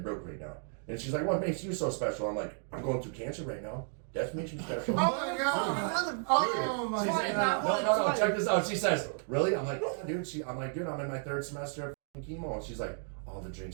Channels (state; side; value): silent; left; 56 dB below the other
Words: broke right now. And she's like, what makes you so special? I'm like, I'm going through cancer right now. That makes you special. Oh my god! Oh my god! No, check this out. She says, really? I'm like, yeah, dude. I'm like, dude, I'm in my 3rd semester of chemo. And she's like, all the